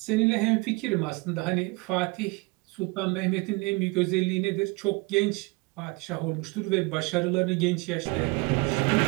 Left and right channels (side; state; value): left; quieter; 26.6 dB